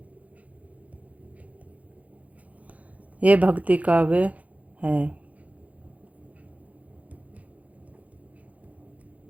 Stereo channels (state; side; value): late; left; 0.070 ms